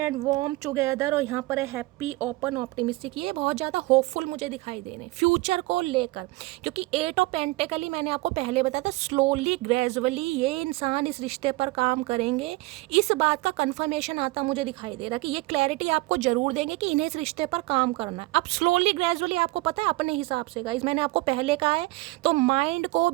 warm together, और यहाँ पर है हैप्पी ओपन ऑप्टिमिस्टिक। ये बहुत ज़्यादा होपफुल मुझे दिखाई दे रहे हैं फ्यूचर को लेकर, क्योंकि 8 ऑफ पेंटिकल मैंने आपको पहले बताया था, स्लोली ग्रेजुअली ये इंसान इस रिश्ते पर काम करेंगे। इस बात का कंफर्मेशन आता मुझे दिखाई दे रहा कि ये क्लैरिटी आपको जरूर देंगे कि इन्हें इस रिश्ते पर काम करना है। अब स्लोली ग्रेजुअली आपको पता है अपने हिसाब से गाइस, मैंने आपको पहले कहा है, तो माइंड को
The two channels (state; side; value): quieter; left; 21.1 dB